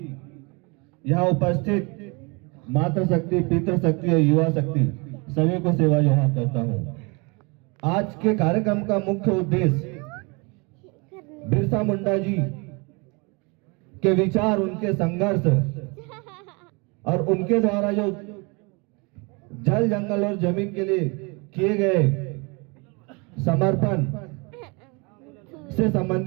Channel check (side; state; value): left; quieter; 29.7 dB